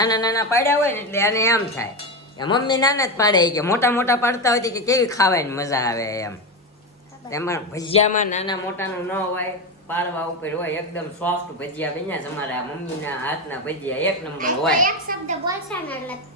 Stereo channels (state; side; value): normal; both; correlation 0.15